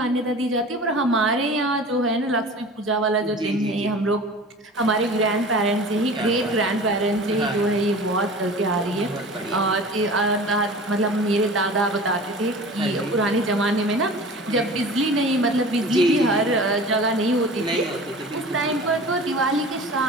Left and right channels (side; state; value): both; normal; correlation 0.39